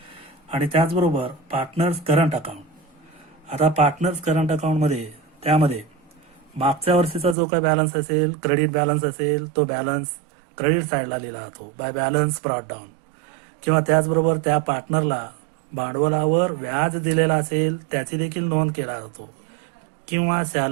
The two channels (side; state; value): left; drops out; at 7.4 s